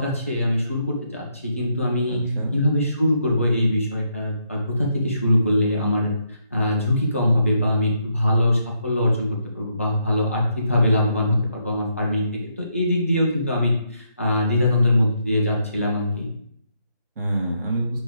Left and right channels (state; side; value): inverted; both; correlation -0.76